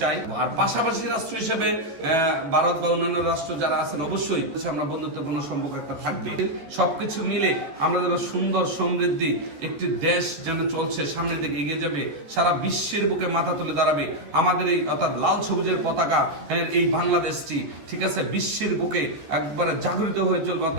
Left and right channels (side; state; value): left; late; 14 ms